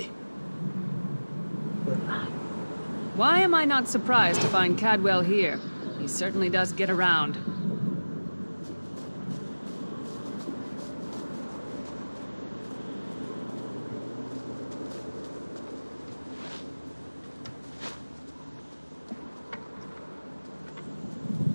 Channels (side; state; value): both; inverted; correlation -1.00